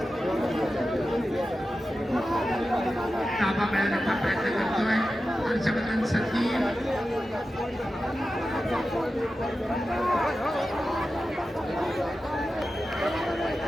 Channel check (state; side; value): normal; both; correlation 0.92